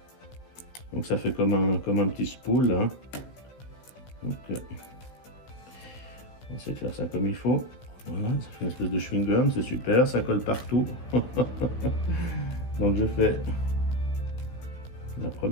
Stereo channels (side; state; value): right; late; 16 ms